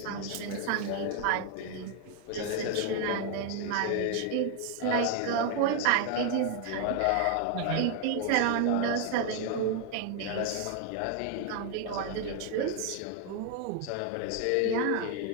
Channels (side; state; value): both; different; correlation 0.00